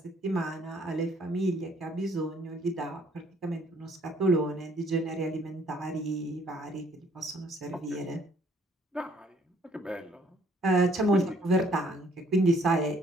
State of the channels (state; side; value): normal; both; correlation 0.63